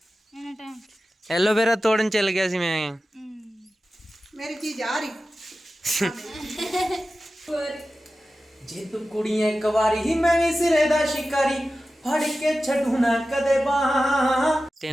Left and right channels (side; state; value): both; normal; correlation 0.94